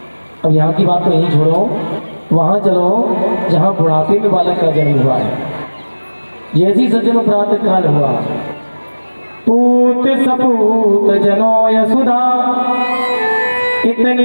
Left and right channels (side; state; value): both; inverted; correlation -1.00